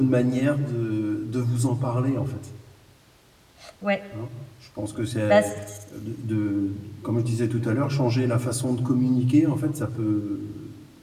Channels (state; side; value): identical; both; correlation 1.00